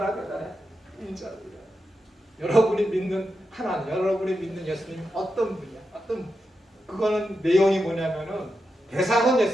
대단해. 인자로 인하여. 여러분이 믿는 하나님, 여러분이 믿는 예수님 어떤 분이야? 그거는 내용이 뭐냐면은 대상은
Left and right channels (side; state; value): both; normal; correlation 0.88